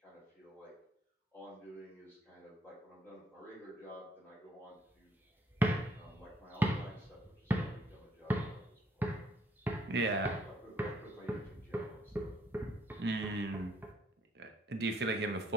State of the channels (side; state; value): both; normal; correlation 0.67